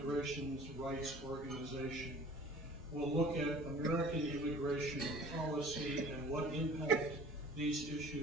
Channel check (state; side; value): normal; both; correlation 0.47